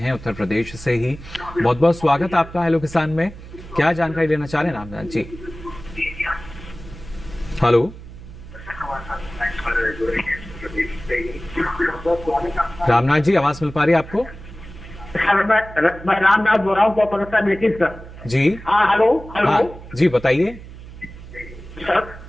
हैं उत्तर प्रदेश से ही। बहुत बहुत स्वागत आपका हेलो किसान में। क्या जानकारी लेना चाह रहे हैं रामनाथ जी? हेलो, रामनाथ जी, आवाज मिल पा रही है आपको? सर, मैं रामनाथ बोल रहा हूँ, सर। जी। हाँ हेलो हेलो। हाँ जी, बताइए सर,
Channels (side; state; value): right; noise; hum, 16 dB below the sound